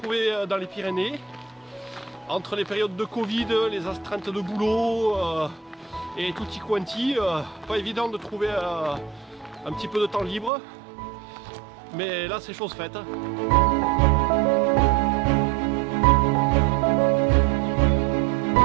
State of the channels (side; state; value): left; drops out; at 10.5 s